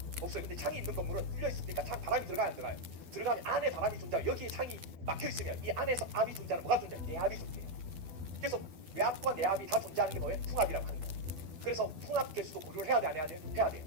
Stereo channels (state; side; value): late; left; 12 ms